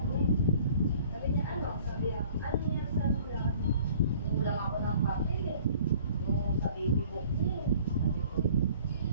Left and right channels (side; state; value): both; inverted; correlation -0.52